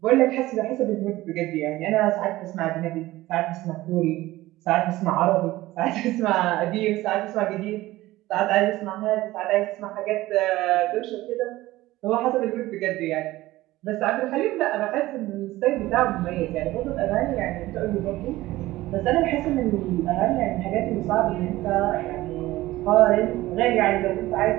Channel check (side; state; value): left; quieter; 17.4 dB